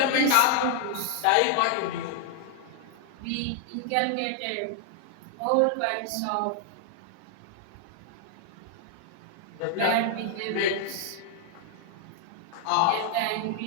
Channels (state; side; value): different; both; correlation 0.00